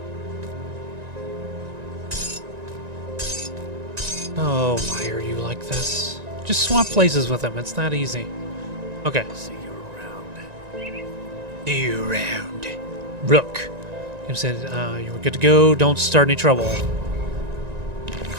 Oh, why are you like this? Just swap places with him. It's that easy. Okay. See you around. See you around. Rook. You said you were good to go. Don't start any trouble.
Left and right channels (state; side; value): late; left; 1.9 ms